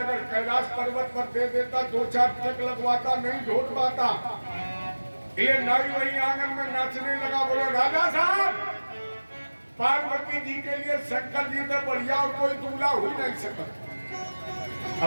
कैलाश पर्वत पर दे देता, 2-4 ट्रक लगवाता, नहीं ढोट पाता। ये नाई वही आंगन में नाचने लगा, बोला राजा साहब पार्वती जी के लिए शंकर जी से बढ़िया और कोई दूल्हा हो ही नहीं सकता।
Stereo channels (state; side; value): inverted; both; correlation -1.00